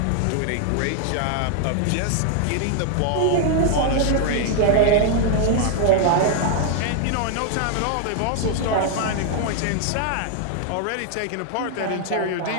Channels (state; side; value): different; both; correlation 0.00